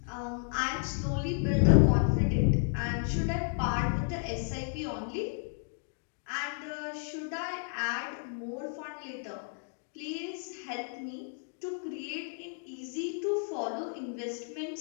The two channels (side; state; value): right; silent; 56 dB below the other